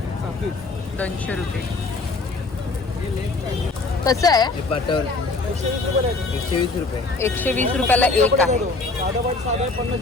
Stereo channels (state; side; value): quieter; right; 3.5 dB